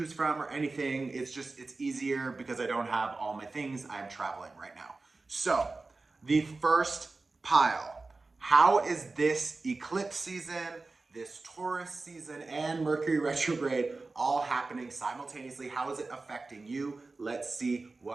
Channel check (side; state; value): left; quieter; 3.6 dB